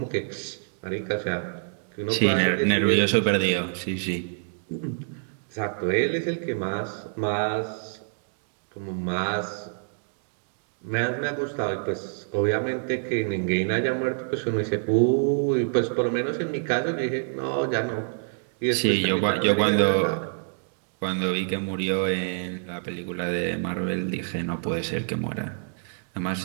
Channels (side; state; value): left; silent; digital silence